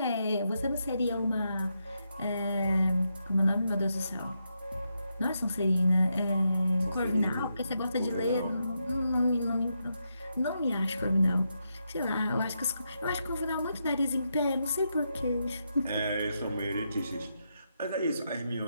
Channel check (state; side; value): inverted; both; correlation -0.82